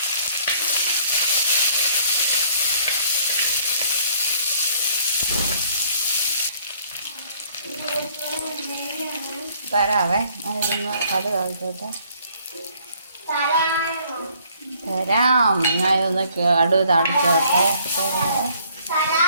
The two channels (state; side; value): inverted; both; correlation -0.61